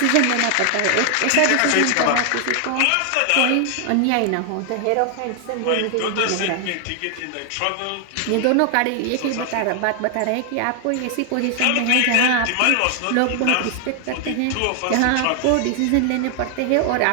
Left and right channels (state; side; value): different; both; correlation 0.00